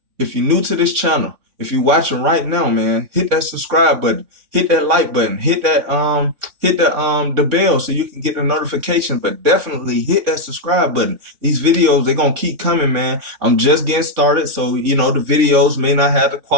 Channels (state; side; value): late; left; 3.6 ms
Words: if you're new to this channel, if you're watching right now, man, hit that subscribe button, hit that like button, hit the bell so you can get the notification, but definitely hit that subscribe button. These videos, they're going to keep coming, man. I'm just getting started, so, the videos may not have the